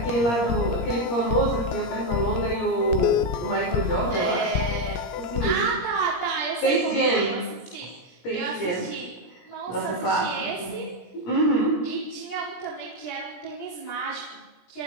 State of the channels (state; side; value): late; right; 17 ms